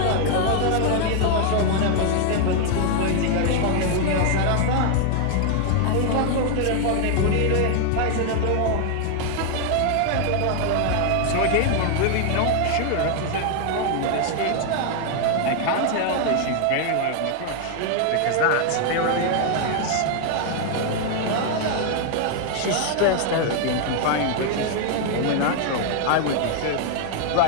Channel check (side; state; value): both; different; correlation 0.00